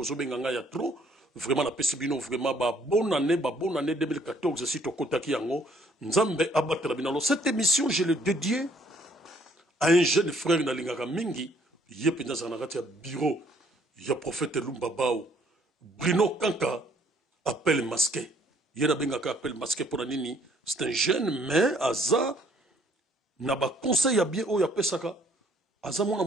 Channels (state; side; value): normal; both; correlation 0.63